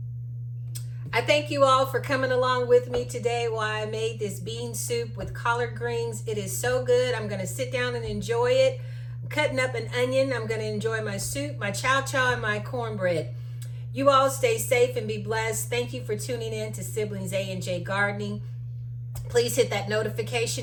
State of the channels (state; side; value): identical; both; correlation 1.00